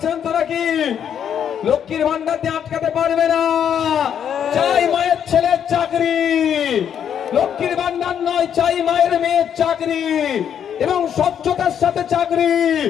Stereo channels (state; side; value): quieter; right; 8.7 dB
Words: তো নাকি? লক্ষ্মীর ভান্ডার দিয়ে আটকাতে পারবে না, চাই মায়ের ছেলের চাকরি, লক্ষ্মীর ভান্ডার নয়, চাই মায়ের মেয়ের চাকরি এবং স্বচ্ছতার সাথে চাকরি।